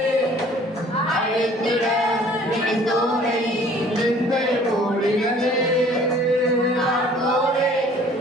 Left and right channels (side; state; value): both; normal; correlation 0.53